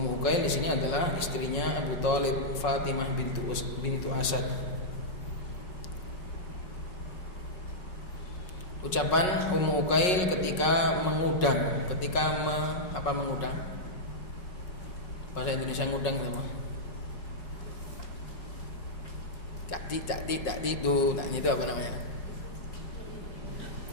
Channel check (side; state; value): right; late; 5.5 ms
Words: Uqail di sini adalah istrinya Abu Thalib, Fatimah bintu Asad. Ucapan Ummu Uqail ketika mengudang, mengudang? Bahasa Indonesia ngudang itu apa? Tak itu apa namanya?